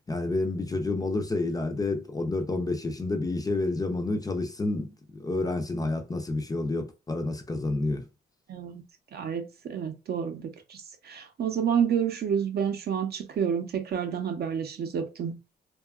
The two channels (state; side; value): normal; both; correlation 0.65